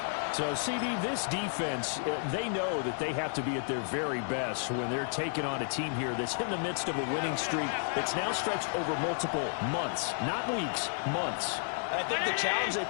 So, CD, this defense, they know that they have to be at their very best when they're taking on a team here that's in the midst of a winning streak that's now stretched over multiple months, not weeks, months. I think the challenge they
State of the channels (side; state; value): right; silent; digital silence